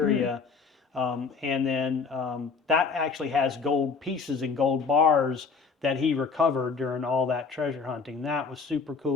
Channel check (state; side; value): quieter; right; 5.1 dB